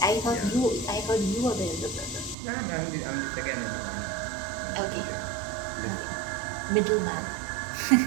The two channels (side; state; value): left; drops out; at 2.4 s